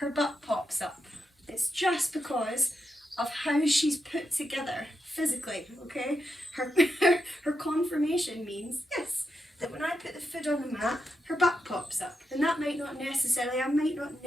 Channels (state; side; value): normal; both; correlation 0.86